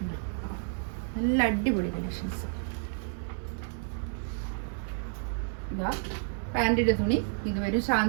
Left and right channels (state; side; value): silent; left; digital silence